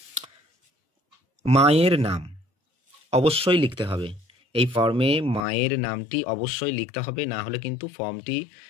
মায়ের নাম অবশ্যই লিখতে হবে, এই ফর্মে মায়ের নামটি অবশ্যই লিখতে হবে, না হলে কিন্তু ফর্মটি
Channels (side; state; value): right; drops out; at 5.5 s